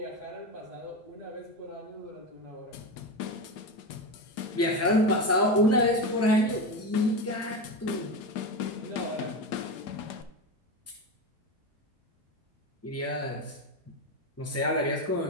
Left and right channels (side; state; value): both; normal; correlation 0.19